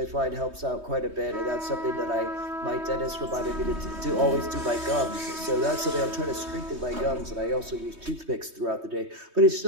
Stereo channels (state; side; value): late; left; 3.2 ms